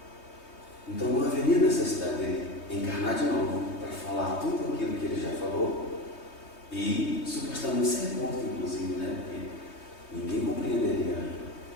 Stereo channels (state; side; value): late; right; 3.2 ms